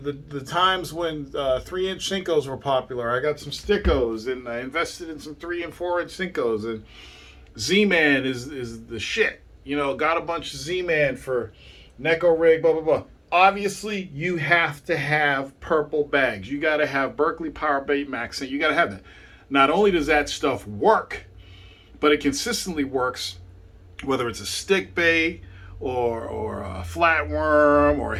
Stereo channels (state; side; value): identical; both; correlation 1.00